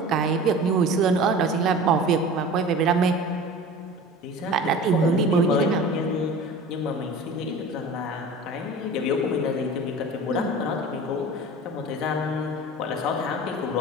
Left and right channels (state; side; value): normal; both; correlation 0.38